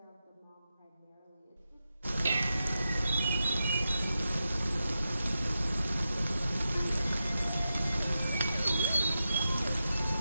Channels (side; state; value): both; inverted; correlation -0.90